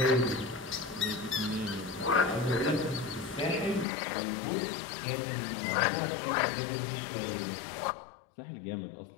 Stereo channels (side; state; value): right; drops out; at 3.9 s